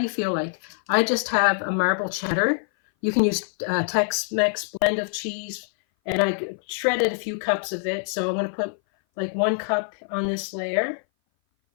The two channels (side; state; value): right; silent; 58 dB below the other